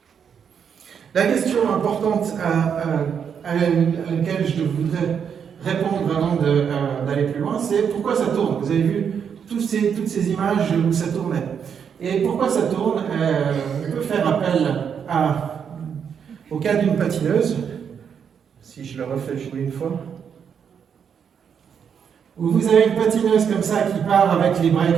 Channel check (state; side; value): quieter; left; 7.4 dB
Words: La question importante à laquelle je voudrais répondre avant d'aller plus loin, c'est pourquoi ça tourne. Vous avez vu toutes ces images où ça tournait. Et pourquoi ça tourne? On peut faire appel au cas d'une patineuse, si je le refais jouer une fois, où vous avez une patineuse comme ça qui part avec les bras